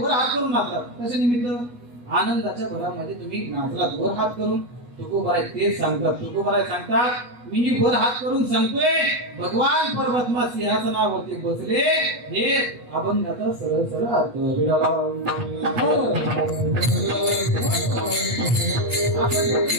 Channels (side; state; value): left; late; 8.2 ms